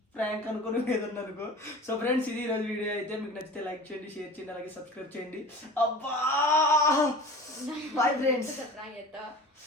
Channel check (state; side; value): normal; both; correlation 0.39